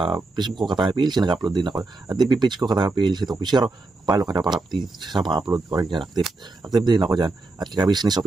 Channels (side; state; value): left; quieter; 3.3 dB